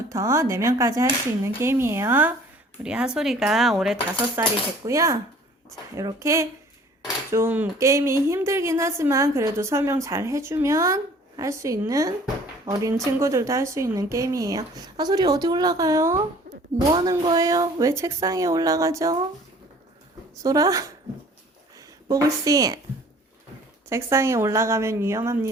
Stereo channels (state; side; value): normal; both; correlation 0.52